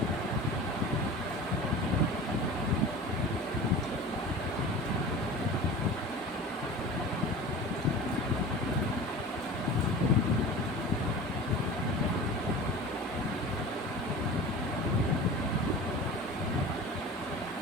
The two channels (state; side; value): normal; both; correlation 0.36